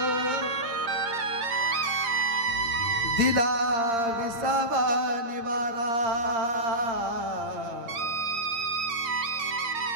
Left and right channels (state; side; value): late; left; 8.7 ms